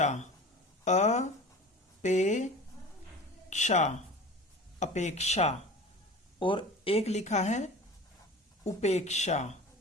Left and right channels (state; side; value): normal; both; correlation 0.37